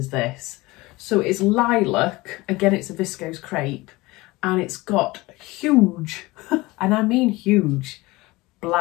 this? So it's lilac, again it's a Viscose Crepe, and it's got huge, and I mean huge,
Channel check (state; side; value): quieter; right; 21.2 dB